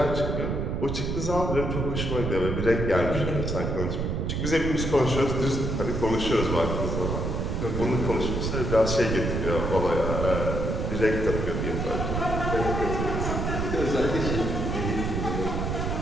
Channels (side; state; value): right; noise; rumble, 1 dB below the sound